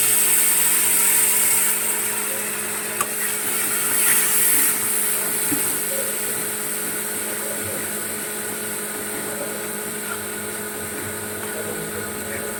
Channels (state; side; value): identical; both; correlation 1.00